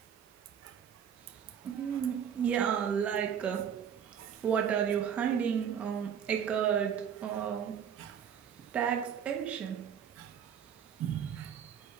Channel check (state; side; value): quieter; left; 8.2 dB